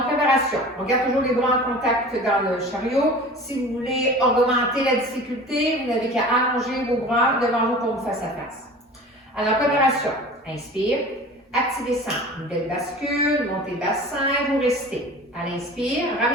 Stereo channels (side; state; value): both; normal; correlation 0.39